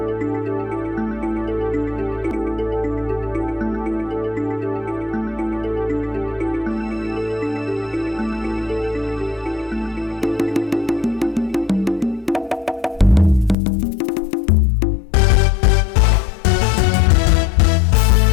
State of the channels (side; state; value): right; drops out; at 13.6 s